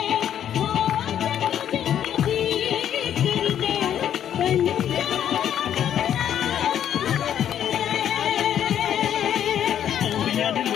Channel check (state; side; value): quieter; right; 9.9 dB